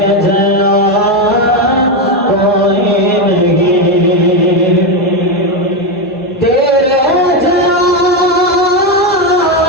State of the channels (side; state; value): both; normal; correlation 0.09